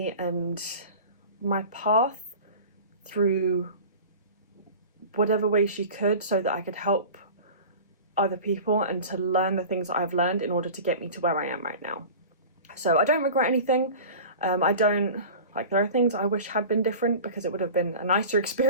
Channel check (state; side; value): inverted; both; correlation -0.37